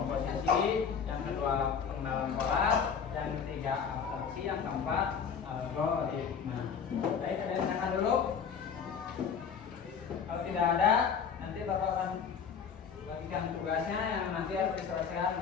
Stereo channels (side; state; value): right; quieter; 6.7 dB